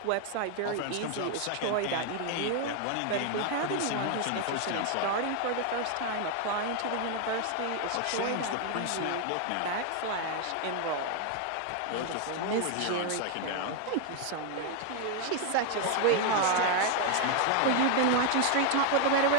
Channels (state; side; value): different; both; correlation 0.00